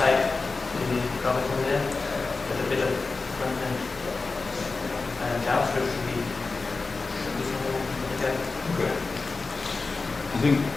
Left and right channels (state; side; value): quieter; right; 3.9 dB